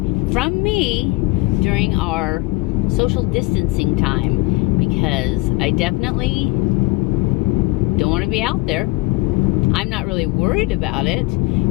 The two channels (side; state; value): right; quieter; 21.2 dB